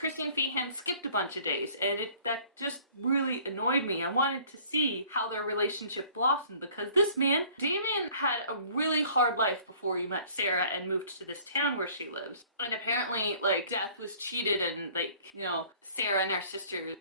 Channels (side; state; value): both; inverted; correlation -0.53